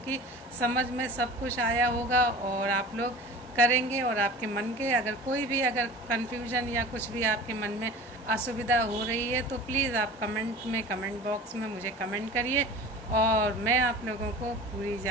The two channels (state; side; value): normal; both; correlation 0.38